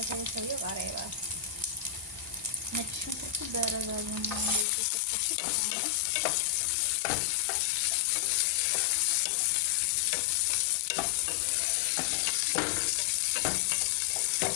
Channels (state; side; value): drops out; right; at 4.7 s